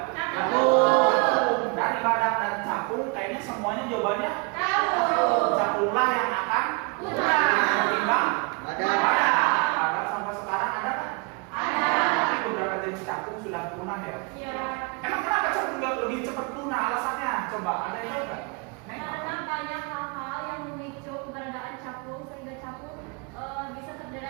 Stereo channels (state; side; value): quieter; left; 31.5 dB